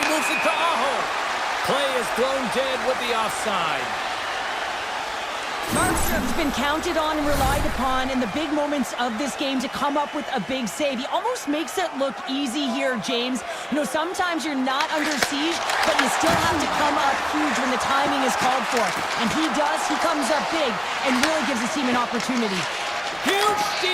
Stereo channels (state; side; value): identical; both; correlation 1.00